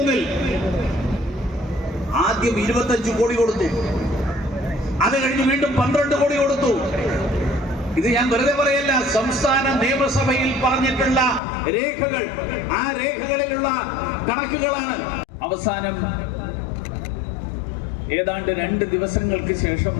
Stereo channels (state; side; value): drops out; right; at 11.4 s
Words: ആദ്യം 25 കോടി കൊടുത്തു. അത് കഴിഞ്ഞ് വീണ്ടും 12 കോടി കൊടുത്തു. ഇത് ഞാൻ വെറുതെ പറയല്ല, സംസ്ഥാന നിയമസഭയിൽ പറഞ്ഞിട്ടുള്ള രേഖകൾ, ആ രേഖകളിലുള്ള കണക്കുകളാണ്. അവസാനം ഏതാണ്ട് 2 ദിവസങ്ങൾക്ക് ശേഷം